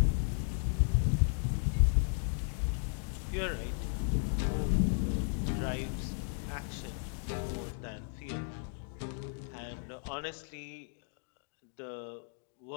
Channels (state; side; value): silent; right; 54 dB below the other